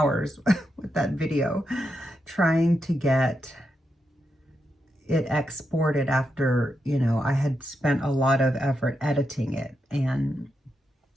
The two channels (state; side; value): normal; both; correlation 0.85